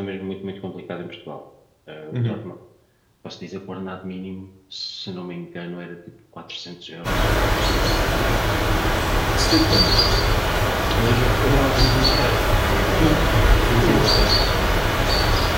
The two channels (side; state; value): both; identical; correlation 1.00